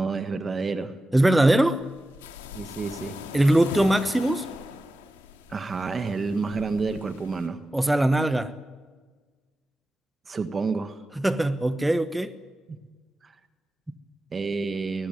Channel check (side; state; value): both; normal; correlation 0.93